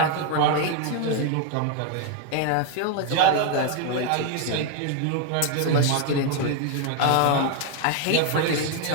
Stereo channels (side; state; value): both; different; correlation 0.01